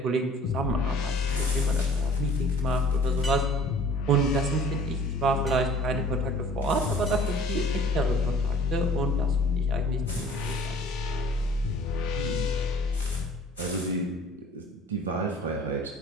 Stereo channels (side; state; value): both; normal; correlation 0.50